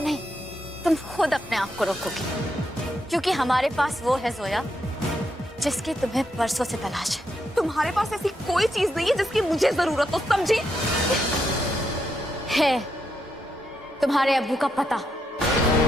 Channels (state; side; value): normal; both; correlation 0.81